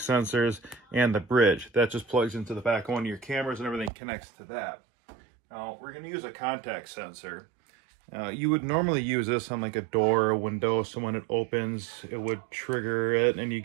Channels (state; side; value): drops out; left; at 3.9 s